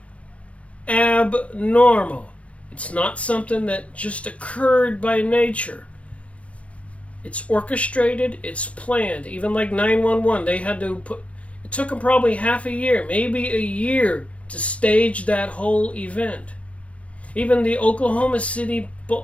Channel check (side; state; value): right; late; 0.063 ms